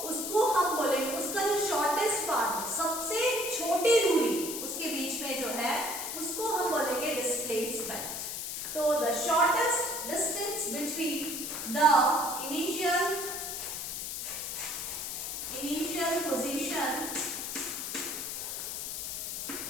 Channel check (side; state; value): left; noise; hiss, 5 dB below the sound